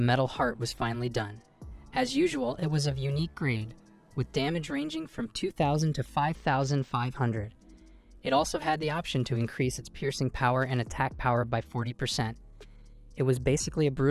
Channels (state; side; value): identical; both; correlation 1.00